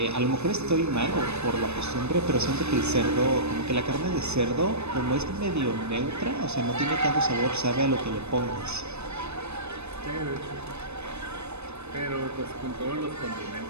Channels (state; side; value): late; left; 0.81 ms